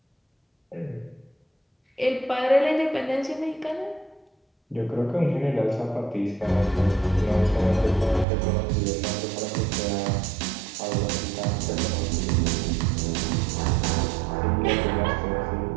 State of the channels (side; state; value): left; drops out; at 8.2 s